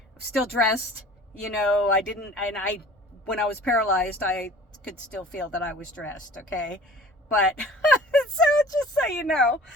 still dressed, you know, when I was paralyzed, I could still feel that I was dressed. Okay. But, so just so you know,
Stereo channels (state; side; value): normal; both; correlation 0.45